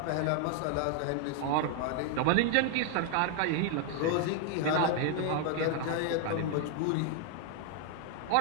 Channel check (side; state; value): both; different; correlation 0.00